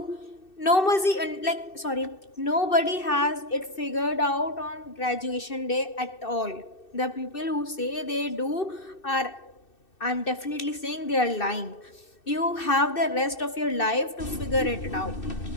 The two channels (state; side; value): late; right; 2.6 ms